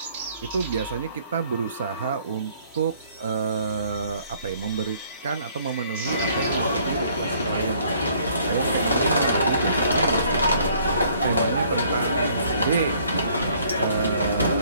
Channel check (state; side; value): inverted; both; correlation -0.61